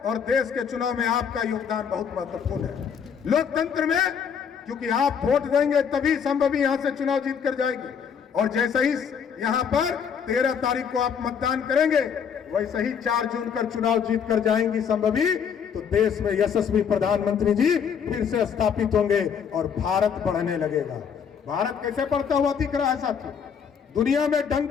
और देश के चुनाव में आपका योगदान बहुत महत्वपूर्ण है। लोकतंत्र में, क्योंकि आप वोट देंगे तभी संभवी यहां से चुनाव जीत कर जाएंगे, और जैसे ही यहां पर 13 तारीख को आप मतदान करेंगे, वैसे ही 4 जून कर चुनाव जीत कर जाएंगी संभवी, तो देश में यशस्वी प्रधानमंत्री जी फिर से स्थापित होंगे और भारत बढ़ने लगेगा। भारत कैसे बढ़ता हुआ दिख रहा है साथियों? दुनिया में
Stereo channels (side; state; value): right; quieter; 7.2 dB